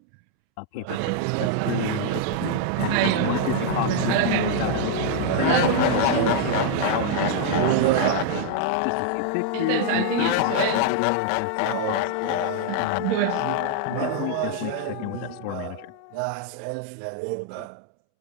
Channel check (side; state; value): both; different; correlation -0.01